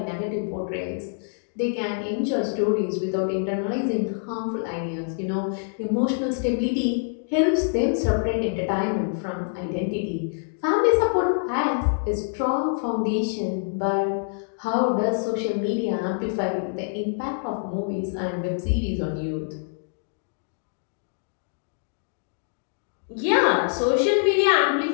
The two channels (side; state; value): right; silent; digital silence